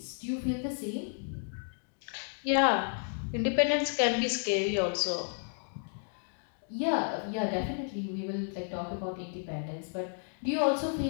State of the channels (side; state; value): right; silent; 56 dB below the other